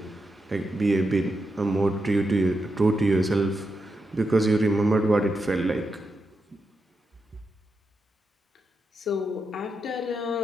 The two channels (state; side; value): normal; both; correlation 0.86